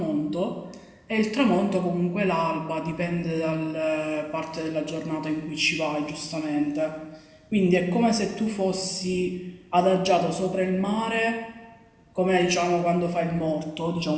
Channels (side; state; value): both; identical; correlation 1.00